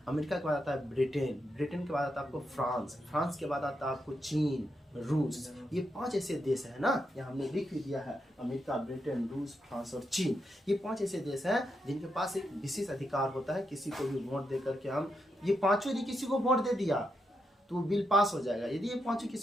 अमेरिका के बाद आता है ब्रिटेन, ब्रिटेन के बाद आता है आपको फ्रांस, फ्रांस के बाद आता है आपको चीन, रूस। ये 5 ऐसे देश है ना, यहाँ हमने लिख भी दिया है, अमेरिका, ब्रिटेन, रूस, फ्रांस और चीन। ये 5 ऐसे देश हैं जिनके पास एक विशेष अधिकार होता है किसी को भी वोट दे करके हम, ये 5 यदि किसी को वोट दे दिया तो वो बिल पास हो जाएगा। यदि ये 5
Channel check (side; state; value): both; normal; correlation 0.83